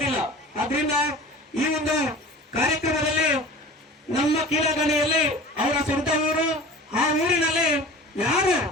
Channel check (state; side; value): normal; both; correlation 0.40